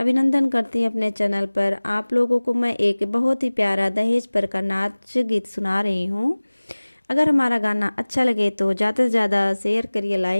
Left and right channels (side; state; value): both; inverted; correlation -1.00